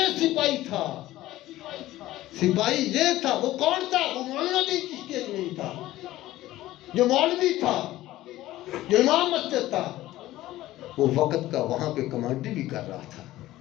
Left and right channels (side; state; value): right; quieter; 15.8 dB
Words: سپاہی تھا، سپاہی یہ تھا۔ وہ کون تھا؟ وہ مولانا الدین چشتی اجمیری تھا، جو مولوی تھا، جو امام مسجد تھا، وہ وقت کا وہاں پہ کمانڈر بھی کر رہا تھا،